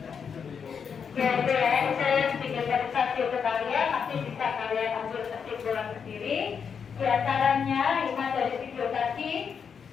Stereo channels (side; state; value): right; quieter; 6.6 dB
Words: ya, saya sedikit verifikasi ke kalian, nanti bisa kalian ambil kesimpulan sendiri. Di antaranya, lima dari video tadi,